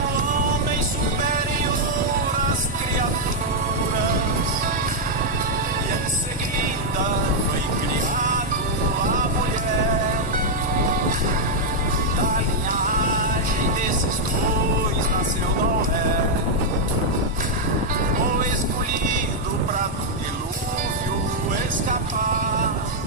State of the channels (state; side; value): normal; both; correlation -0.03